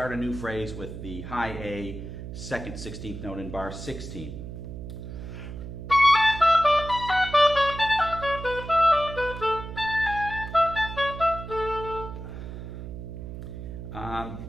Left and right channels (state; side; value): noise; right; hum, 9 dB below the sound